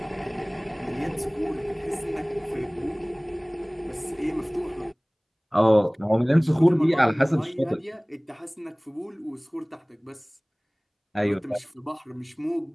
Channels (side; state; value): both; identical; correlation 1.00